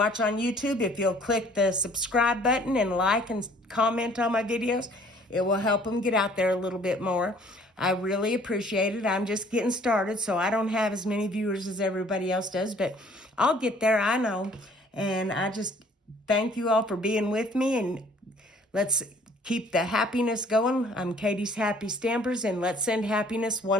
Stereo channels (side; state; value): both; normal; correlation 0.57